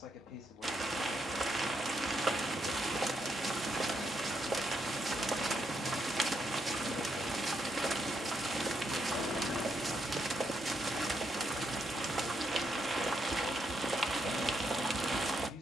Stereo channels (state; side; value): normal; both; correlation 0.79